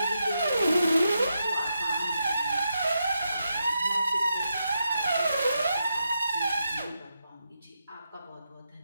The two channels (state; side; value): inverted; both; correlation -0.85